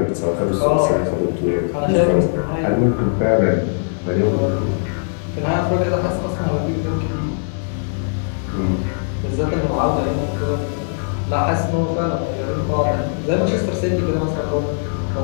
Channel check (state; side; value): silent; right; digital silence